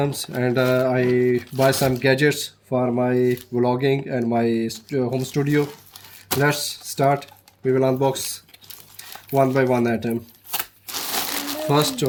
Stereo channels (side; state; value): both; identical; correlation 1.00